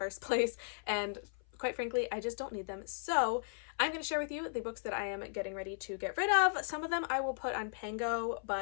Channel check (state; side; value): silent; right; 54 dB below the other